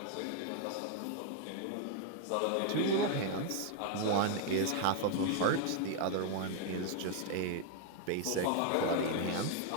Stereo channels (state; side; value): different; both; correlation 0.00